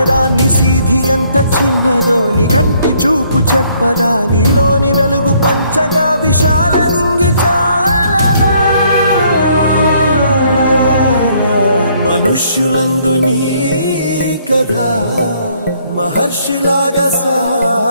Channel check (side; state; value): both; inverted; correlation -0.65